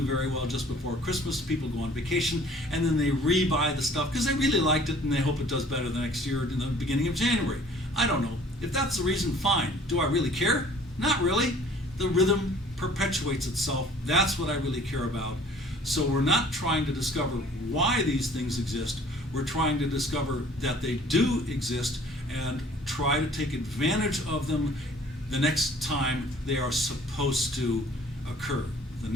very well just before Christmas. People go on vacation and then they rebuy the stuff because they really liked it and they hope it does better the next year in the beginning of January. I don't know. If that's the reason, fine. Do I really care? Not really. The rhythm perpetuates itself. That's what I really care about. So we're not trying to discover why these things exist. We're trying to discover that they do exist and try to take advantage of them the next time they are supposed to occur. The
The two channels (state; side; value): normal; both; correlation 0.53